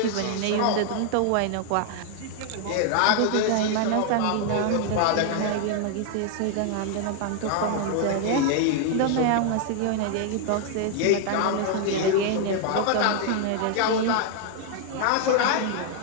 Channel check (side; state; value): both; different; correlation 0.00